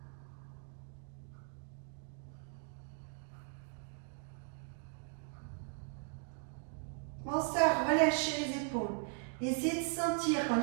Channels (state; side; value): silent; left; 52 dB below the other